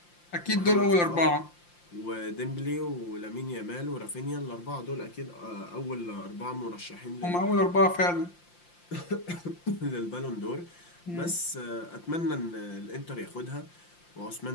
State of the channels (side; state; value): right; late; 5.8 ms